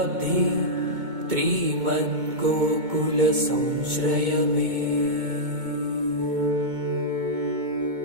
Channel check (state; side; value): late; left; 2.2 ms